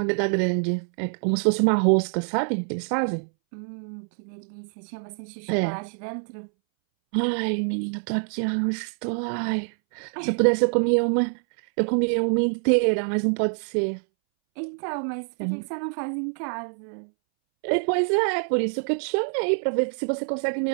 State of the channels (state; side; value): silent; left; 61 dB below the other